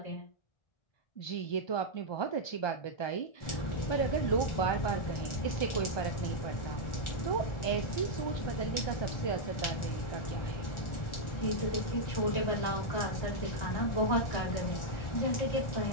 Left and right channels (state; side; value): late; right; 1.4 ms